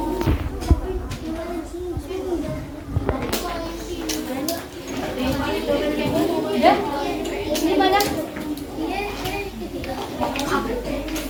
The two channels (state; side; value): identical; both; correlation 1.00